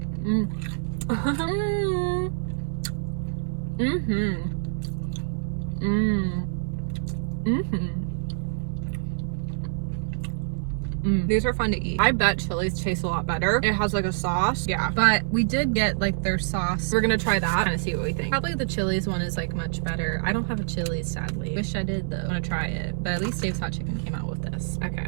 These are fun to eat. I bet Chili's tastes a lot better. It has like a sauce. Yeah. But we did get like their sauce. We're gonna try that and see what we think. Probably the Chili's one is like much better. I don't have a Chili's, sadly. Wish I did though. I wanna try it. But at least Dave's hot chicken came out with this. Okay,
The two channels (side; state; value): left; silent; 61 dB below the other